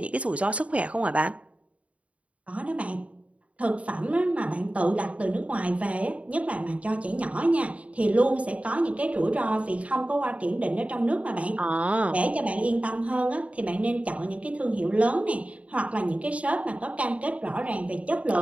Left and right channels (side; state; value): left; late; 0.065 ms